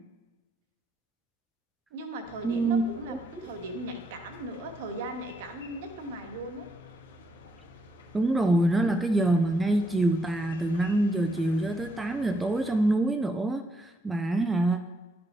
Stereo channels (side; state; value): both; normal; correlation 0.78